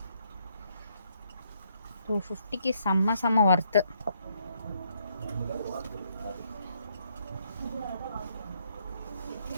250க்கு செம்ம ஒர்த்து.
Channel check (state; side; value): inverted; both; correlation -0.71